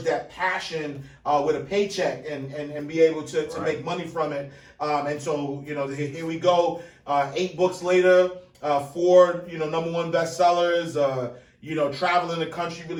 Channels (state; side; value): identical; both; correlation 1.00